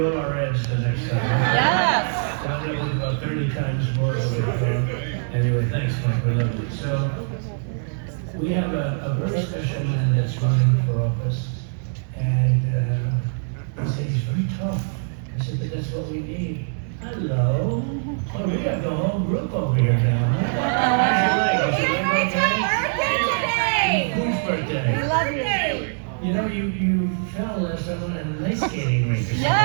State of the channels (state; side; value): silent; left; digital silence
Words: our ads the next time. Yes. That was about 30 times more of it. Anyway, thanks, Mike. We love you. So, we have a very special man that's running for office. And he said he's very tough. I said, but that's what we need. Hello. Oh, we got the whole group over here now. How's your leg? It's my birthday today. Whose birthday? I love you. You know, you fell last time on an ice skating rink.